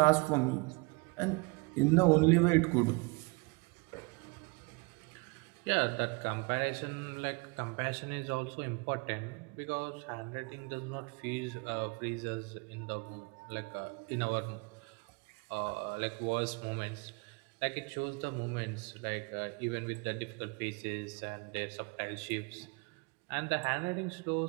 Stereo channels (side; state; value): left; quieter; 29.4 dB